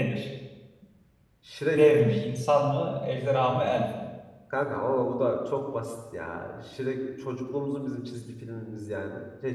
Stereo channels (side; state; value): both; identical; correlation 1.00